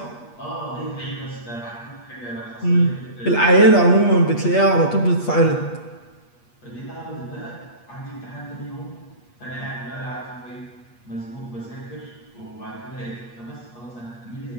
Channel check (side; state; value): right; late; 8.4 ms